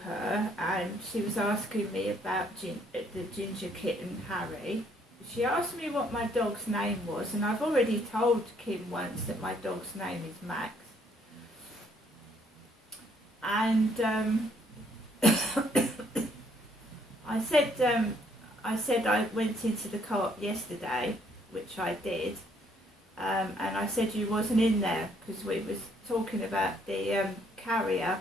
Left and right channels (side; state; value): both; normal; correlation 0.66